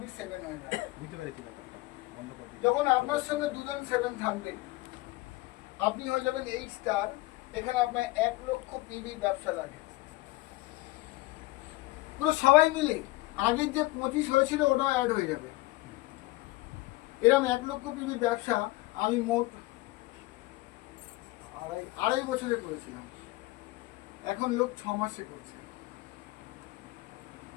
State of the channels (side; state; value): right; quieter; 20.2 dB